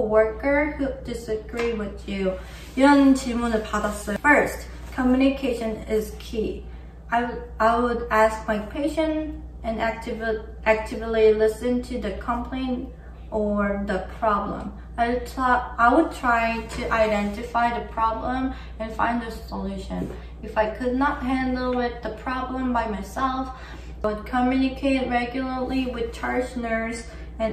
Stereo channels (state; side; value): identical; both; correlation 1.00